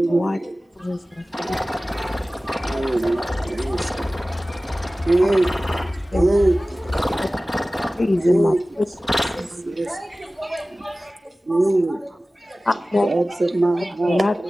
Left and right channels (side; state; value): both; normal; correlation 0.97